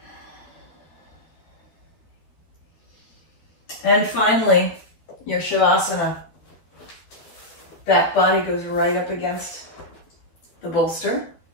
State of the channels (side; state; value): right; late; 12 ms